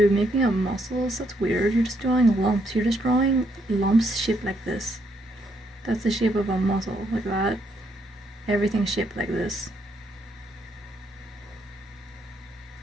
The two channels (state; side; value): normal; both; correlation 0.74